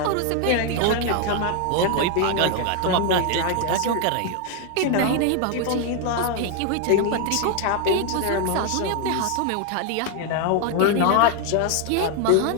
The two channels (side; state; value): both; different; correlation 0.00